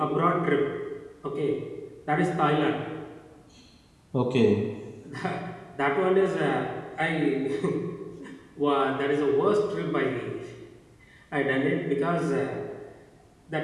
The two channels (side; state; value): both; identical; correlation 1.00